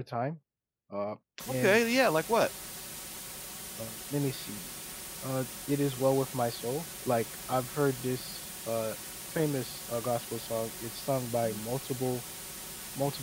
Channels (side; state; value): both; identical; correlation 1.00